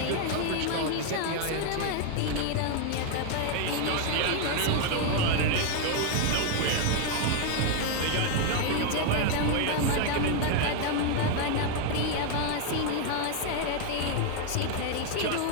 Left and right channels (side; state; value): both; different; correlation 0.00